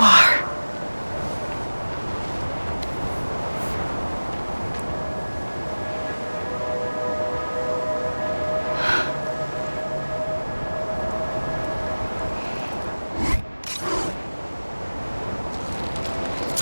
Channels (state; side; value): inverted; both; correlation -1.00